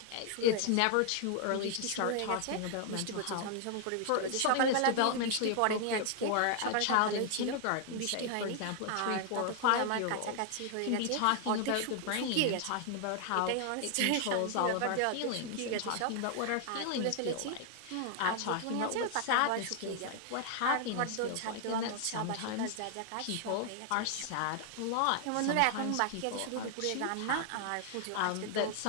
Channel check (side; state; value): both; different; correlation 0.00